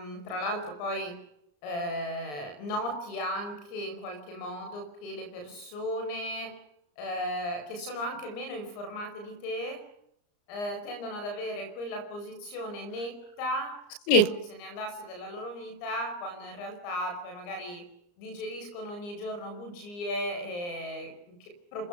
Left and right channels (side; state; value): right; late; 34 ms